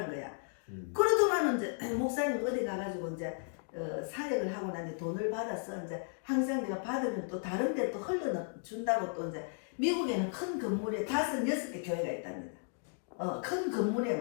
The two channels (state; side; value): silent; right; 55 dB below the other